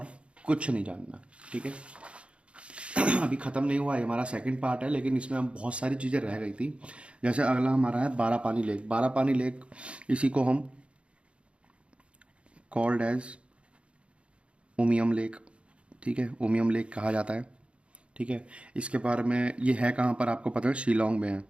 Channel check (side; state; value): left; late; 0.059 ms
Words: कुछ नहीं जानना। ठीक है, अभी ख़त्म नहीं हुआ है, हमारा सेकंड पार्ट है, लेकिन इसमें हम बहुत सारी चीज़ें रह गई थी। जैसे अगला हमारा है बारापानी लेक। बारापानी लेक, इसी को हम कॉल्ड एज उमियम लेक, ठीक है, उमियम लेक कहा जाता है। ठीक है, इसके बारे में, ये है कहाँ पर आपको पता है, शिलोंग में है,